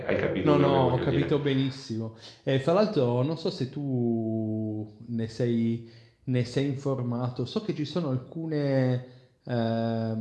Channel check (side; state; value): both; identical; correlation 1.00